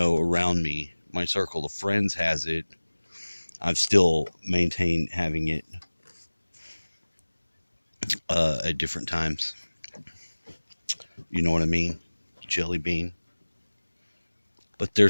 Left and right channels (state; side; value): inverted; both; correlation -1.00